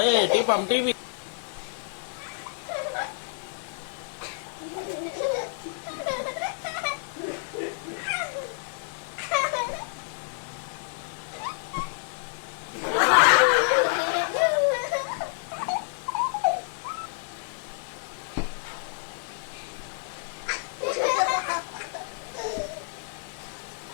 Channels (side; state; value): right; silent; digital silence